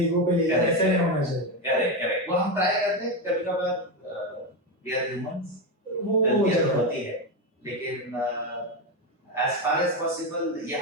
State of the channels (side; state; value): both; normal; correlation 0.12